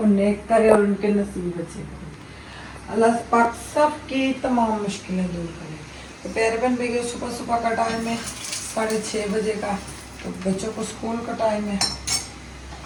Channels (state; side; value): identical; both; correlation 1.00